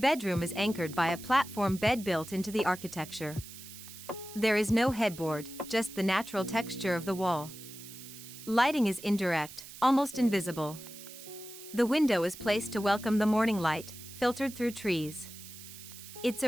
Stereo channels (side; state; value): right; noise; hiss, 15 dB below the sound